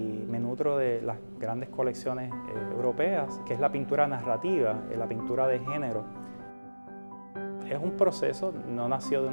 me nutro de las grandes colecciones europeas, que es la pintura narrativa, la pintura de género. Es un proceso, no nació de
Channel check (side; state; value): both; inverted; correlation -1.00